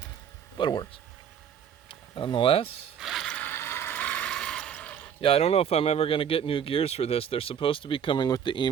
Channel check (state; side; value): quieter; left; 8.3 dB